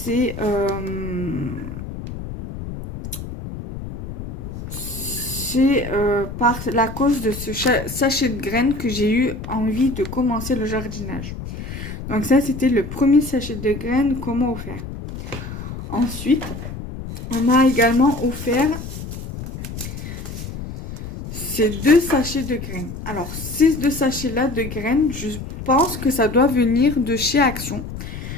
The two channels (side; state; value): left; noise; rumble, 9 dB below the sound